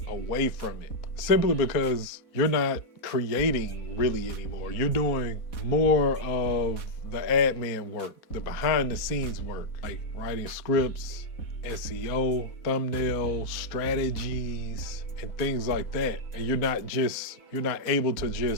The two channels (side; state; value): right; late; 4.2 ms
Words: away from it, simply because you're not creating really anymore. You're doing more of the admin work, the behind the scenes work, like writing scripts, SEO, thumbnail strategies, and things like that. And you're not able to